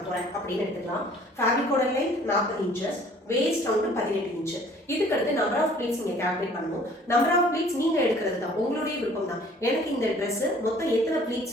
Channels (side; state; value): both; normal; correlation 0.54